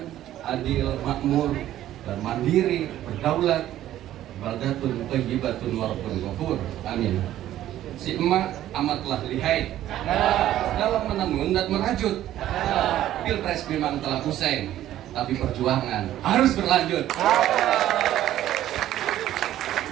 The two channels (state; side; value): quieter; left; 12.9 dB